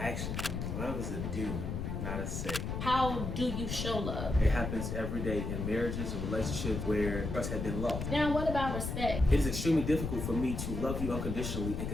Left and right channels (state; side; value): noise; left; rumble, 3 dB below the sound